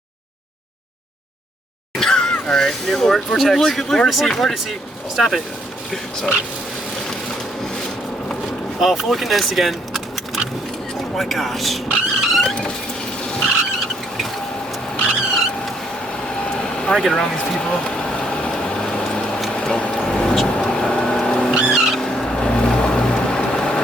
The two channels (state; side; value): normal; both; correlation 0.70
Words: All right. New vortex. Look at Vortice. Stop it. Sorry. Oh, fully condensed again. Oh my gosh. I get around these people.